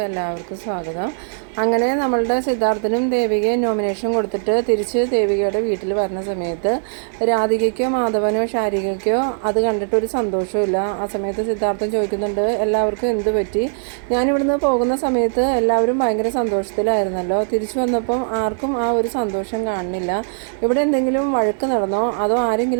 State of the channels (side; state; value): left; silent; digital silence